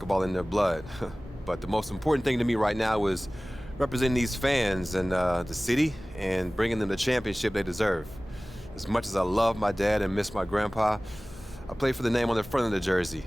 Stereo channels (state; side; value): normal; both; correlation 0.98